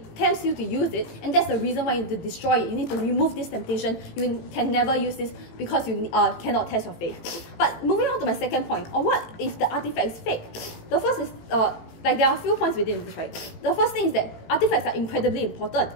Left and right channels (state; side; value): late; right; 18 ms